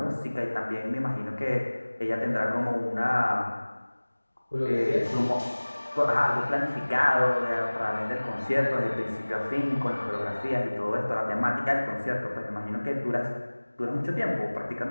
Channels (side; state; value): both; inverted; correlation -1.00